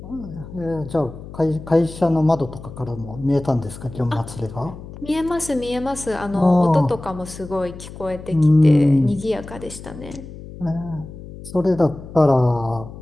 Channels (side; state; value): left; noise; hum, 14 dB below the sound